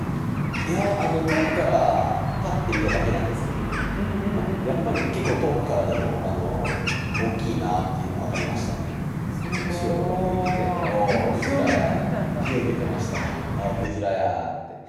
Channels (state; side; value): identical; both; correlation 1.00